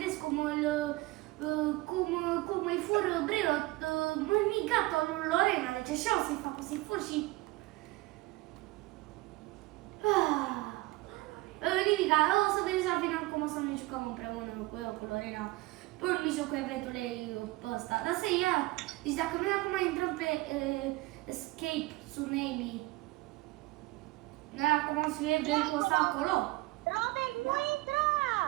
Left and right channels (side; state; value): left; quieter; 20.5 dB